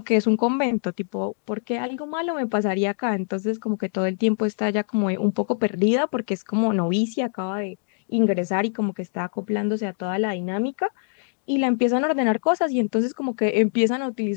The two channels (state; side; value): silent; right; digital silence